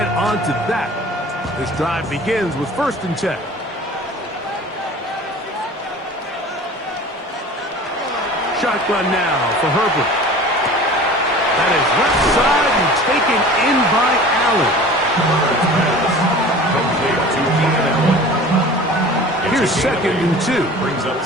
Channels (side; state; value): both; normal; correlation 0.41